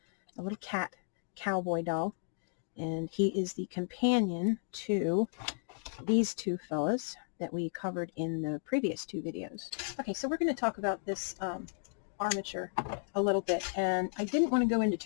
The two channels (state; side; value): silent; right; digital silence